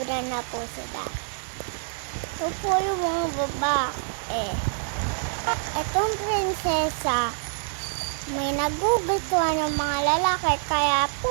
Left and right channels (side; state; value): left; silent; 61 dB below the other